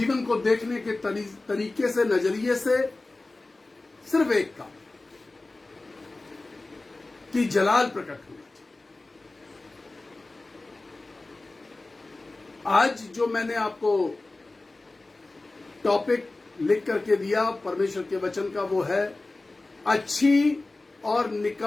को देखने के तरीके से, नजरिए से, सिर्फ एक काम कि जलाल प्रकट होना चाहिए। आज जो मैंने आपको टॉपिक लिख करके दिया परमेश्वर के वचन का, वो है अच्छी और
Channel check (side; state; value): right; quieter; 3.1 dB